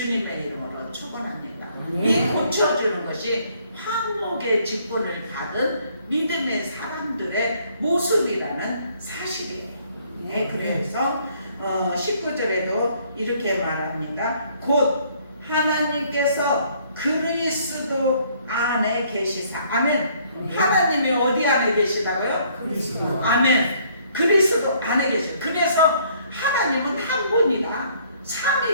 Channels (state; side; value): inverted; both; correlation -0.63